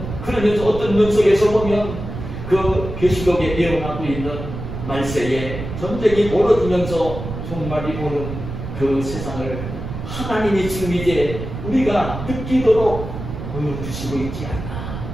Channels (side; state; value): right; noise; rumble, 8 dB below the sound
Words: 그러면서 어떤 면속에서 보면 그 계시록에 예언하고 있는 말세에 전쟁이 벌어지면서 종말이 오는 그 세상을 하나님이 지금 이제 우리가 느끼도록 보여주시고 있지 않나.